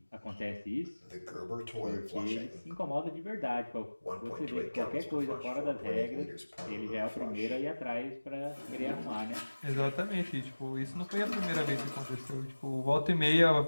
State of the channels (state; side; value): inverted; both; correlation -1.00